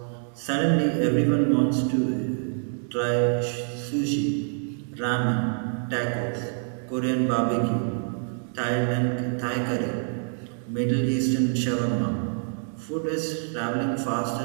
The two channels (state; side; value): silent; left; 61 dB below the other